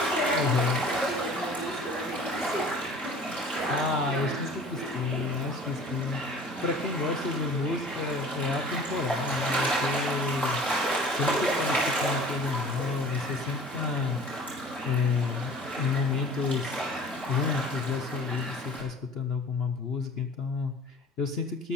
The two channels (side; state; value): both; normal; correlation 0.46